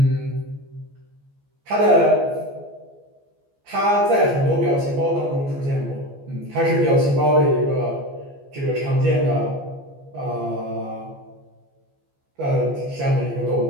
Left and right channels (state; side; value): late; left; 14 ms